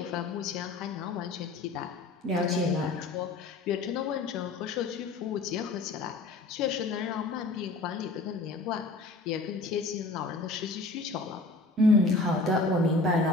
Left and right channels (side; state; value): right; quieter; 3.2 dB